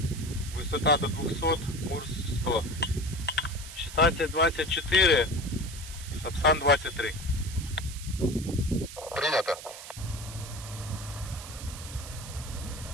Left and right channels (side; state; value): right; noise; hiss, 13 dB below the sound